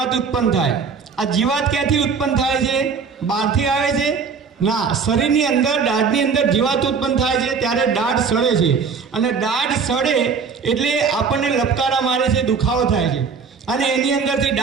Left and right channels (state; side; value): quieter; left; 5.6 dB